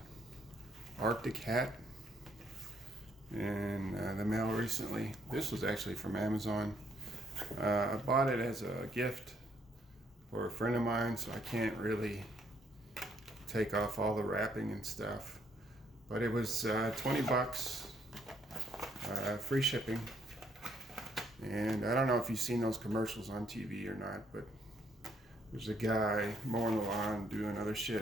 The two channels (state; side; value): normal; both; correlation 0.70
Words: Arctic hat in the mail recently. This was actually from Amazon. I bought it as a gift for a friend of mine, so I can't really take off all the wrapping and stuff. But it was 20 bucks, free shipping. And I don't know if you've seen those commercials on TV or not, but there's a guy mowing the lawn, doing other